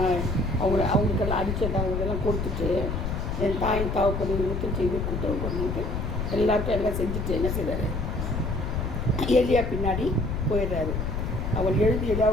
அவங்களுக்கெல்லாம் அடிச்சது அவங்களுக்கெல்லாம் கொடுத்துட்டு என் தாயின் தாவப்படி முத்தம் செய்து கூட்டுறவு பண்ணிட்டு எல்லாருக்கும் எல்லாம் செஞ்சுட்டு என்ன செய்கிறாரு? எலியா பின்னாடி போயிடுறாரு. அவன் எழுதி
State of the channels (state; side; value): noise; left; rumble, 2 dB below the sound